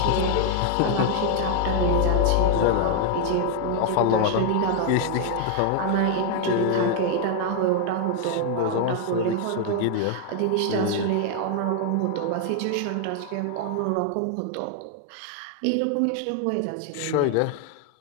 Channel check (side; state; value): both; different; correlation 0.00